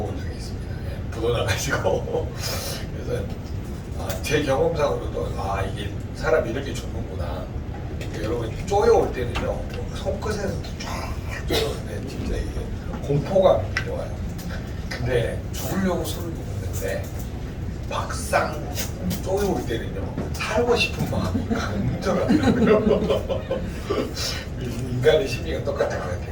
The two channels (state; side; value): identical; both; correlation 1.00